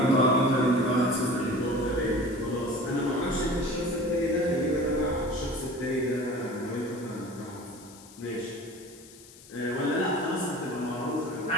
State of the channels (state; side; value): noise; left; hiss, 21 dB below the sound